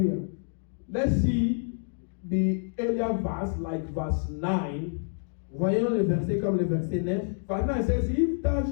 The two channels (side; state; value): right; silent; digital silence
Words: Let's see the earlier verse, like verse 9. Voyons le verset comme le verset 9. Verse 9 says, If thou